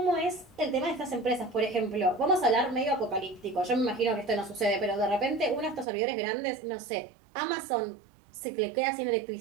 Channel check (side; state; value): left; drops out; at 5.9 s